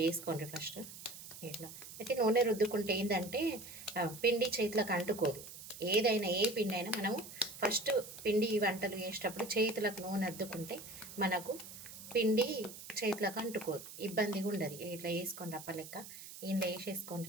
వేసుకోండి ఫస్ట్. ఇట్లా అయితే నూనె రుద్దుకుంటే ఏంటంటే పిండి చేతులకు అంటుకోదు. ఏదైనా ఏ పిండి అయినా మనము ఫస్ట్ పిండి వంటలు చేసేటప్పుడు చేతులకు నూనె అద్దుకుంటే మనకు పిండి చేతులకు అంటుకోదు, ఇబ్బందిగా ఉండదు. ఇట్లా వేసుకొని రప్పలెక్క ఇంట్లో వేసేసుకొని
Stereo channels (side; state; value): right; noise; hiss, 13 dB below the sound